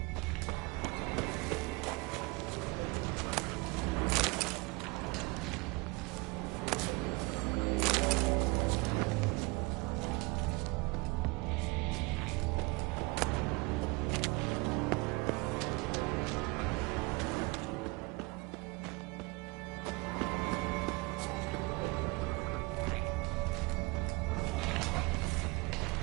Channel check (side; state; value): left; quieter; 25.9 dB